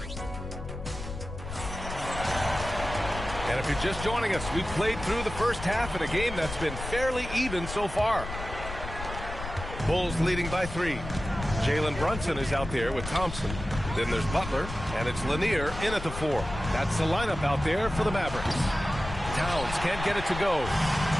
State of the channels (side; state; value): left; noise; rumble, 9 dB below the sound